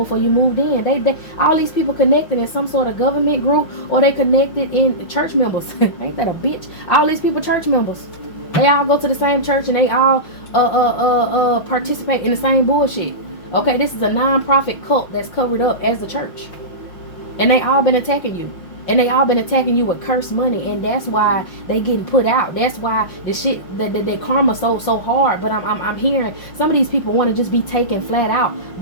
you moved in. They all these people connected in some sort of government group, or they connected in church members. Ain't that a bitch? All these people church members. They all go to the same church and they all participate in the same bullshit. Okay, this is a non-profit cult that's covered up as a church. And they all been attacking you. And they all been attacking you with cursed money. And that's why they getting put out. That's why the shit, the karma so hard. But I'm hearing some of these people want to just be taken flat out.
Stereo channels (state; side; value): late; right; 5.6 ms